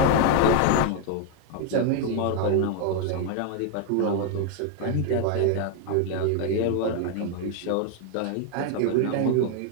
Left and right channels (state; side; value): different; both; correlation 0.00